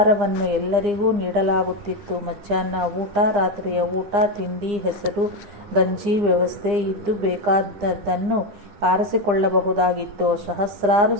ಎಲ್ಲರಿಗೂ ನೀಡಲಾಗುತ್ತಿತ್ತು. ಮಧ್ಯಾಹ್ನ ಊಟ, ರಾತ್ರಿಯ ಊಟ, ತಿಂಡಿ, ಹೆಸರು ಗಂಜಿ ವ್ಯವಸ್ಥೆ ಇದ್ದು ಬೇಕಾದದ್ದನ್ನು ಆರಿಸಿಕೊಳ್ಳಬಹುದಾಗಿತ್ತು. ಸಹಸ್ರಾರು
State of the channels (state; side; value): late; left; 9.8 ms